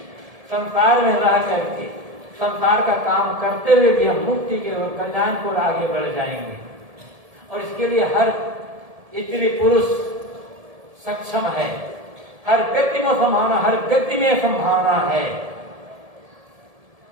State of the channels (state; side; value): late; left; 1.7 ms